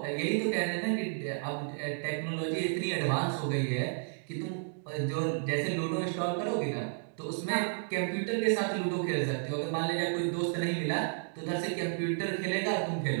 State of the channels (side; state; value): left; silent; digital silence